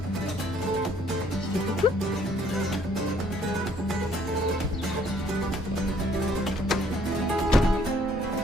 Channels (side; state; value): both; normal; correlation 0.63